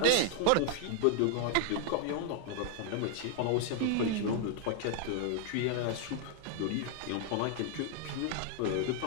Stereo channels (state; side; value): different; both; correlation 0.00